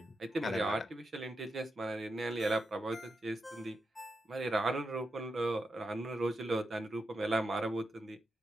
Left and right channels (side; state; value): both; normal; correlation 0.87